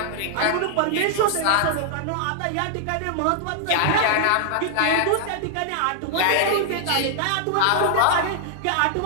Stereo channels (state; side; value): different; both; correlation -0.01